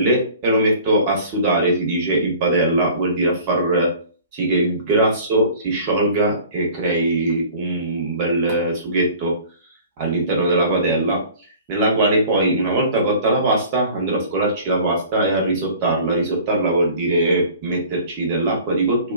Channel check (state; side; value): inverted; both; correlation -0.46